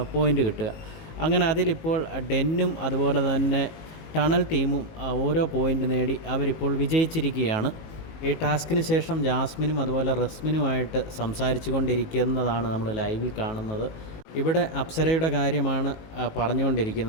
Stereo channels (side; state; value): right; late; 19 ms